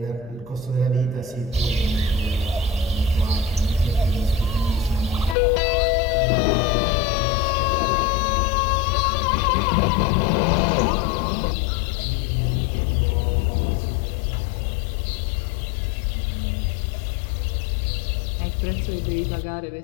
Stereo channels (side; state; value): right; drops out; at 5.4 s